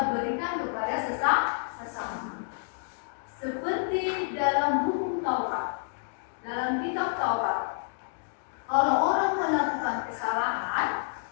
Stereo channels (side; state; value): right; silent; digital silence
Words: berikan kepada sesama. Seperti dalam hukum Taurat, dalam kitab Taurat, kalau orang melakukan kesalahan,